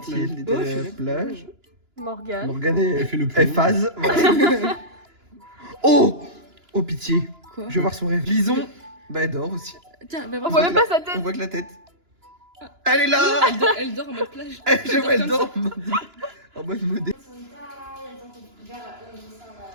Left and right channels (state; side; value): late; left; 2.9 ms